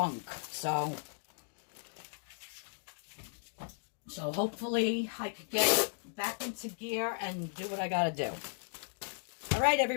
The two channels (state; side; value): silent; right; digital silence